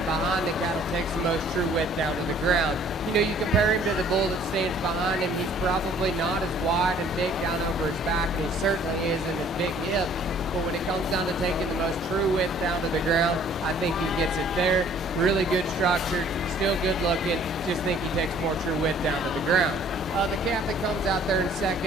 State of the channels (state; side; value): normal; both; correlation 0.56